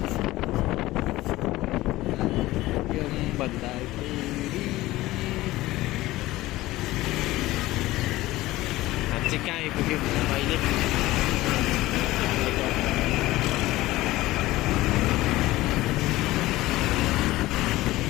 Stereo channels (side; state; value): right; quieter; 17.6 dB